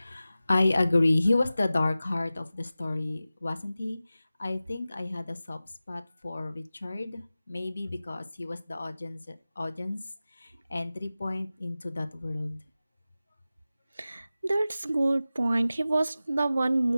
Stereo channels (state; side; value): inverted; both; correlation -0.95